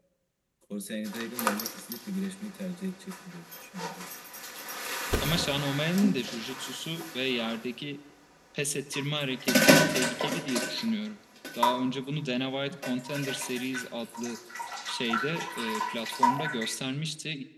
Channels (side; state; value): both; identical; correlation 1.00